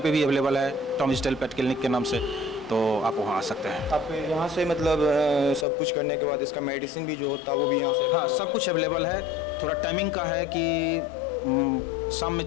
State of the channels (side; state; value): right; drops out; at 5.7 s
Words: भी अवेलेबल है टॉमीज टेल पेट क्लिनिक के नाम से, तो आप वहाँ आ सकते हैं। आप यहाँ से मतलब सब कुछ करने के बाद इसका मेडिसिन भी जो होता है वो भी यहाँ से? हाँ, सब कुछ अवेलेबल है। थोड़ा टाइमिंग का है कि शाम में